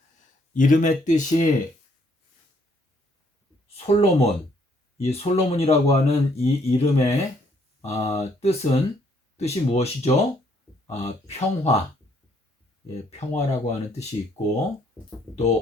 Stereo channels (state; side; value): normal; both; correlation 0.68